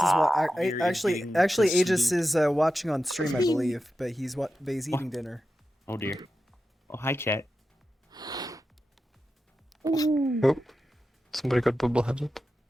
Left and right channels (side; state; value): both; normal; correlation 0.91